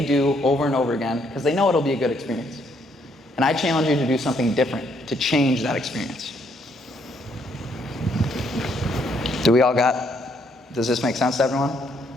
do over and over again because they know it'll be a good experience. And I challenge you to do something different to change that experience. Does this make sense to everyone?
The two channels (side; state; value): both; normal; correlation 0.70